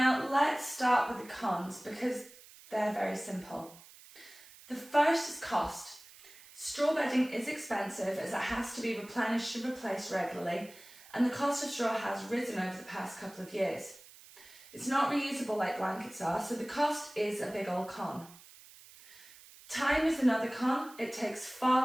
let's start with the cons because they're very simple. The first is cost. Straw bedding is expensive as it has to be replenished and replaced regularly, and the cost of straw has risen over the past couple of years. It's not reusable like blankets are, so the cost is a big old con. Time is another con. It takes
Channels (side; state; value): right; noise; hiss, 21 dB below the sound